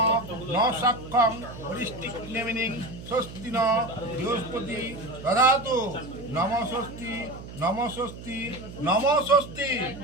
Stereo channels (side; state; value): right; noise; hum, 13 dB below the sound